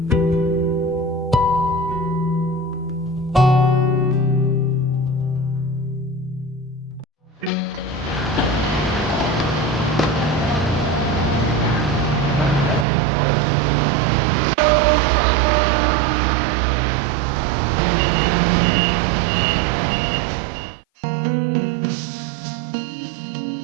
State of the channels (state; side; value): drops out; left; at 12.9 s